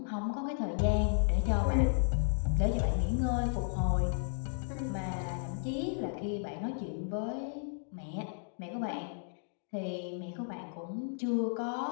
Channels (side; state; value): right; silent; digital silence